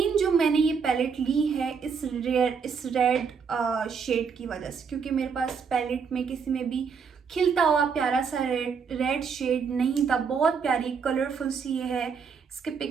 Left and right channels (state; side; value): quieter; left; 6.0 dB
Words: जो मैंने ये पैलेट ली है इस रेड शेड की वजह से, क्योंकि मेरे पास पैलेट में किसी में भी खिलता हुआ प्यारा सा रेड शेड नहीं था। बहुत प्यारी कलरफुल सी ये है। इसके